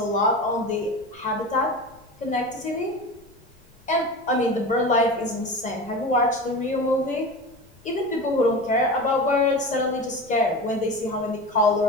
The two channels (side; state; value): left; noise; rumble, 30 dB below the sound